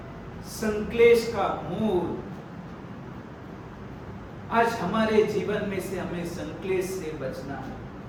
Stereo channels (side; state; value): both; identical; correlation 1.00